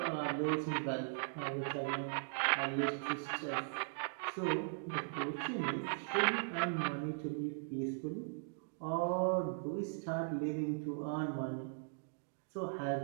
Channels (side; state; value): left; silent; digital silence